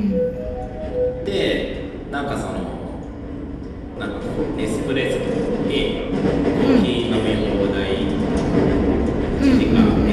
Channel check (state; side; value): identical; both; correlation 1.00